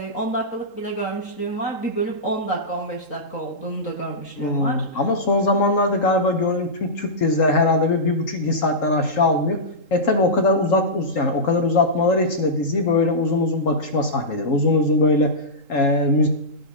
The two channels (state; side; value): late; right; 3.8 ms